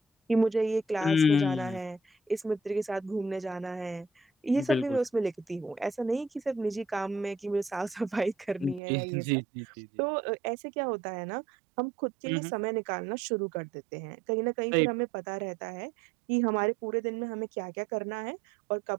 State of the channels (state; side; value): drops out; left; at 8.8 s